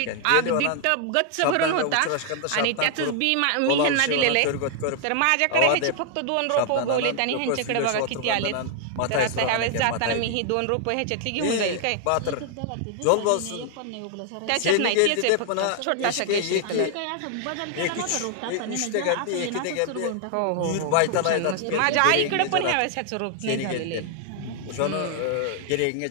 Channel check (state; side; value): different; both; correlation 0.00